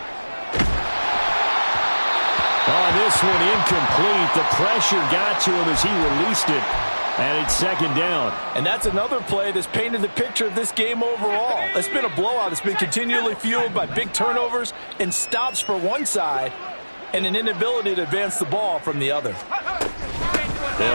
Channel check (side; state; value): both; inverted; correlation -1.00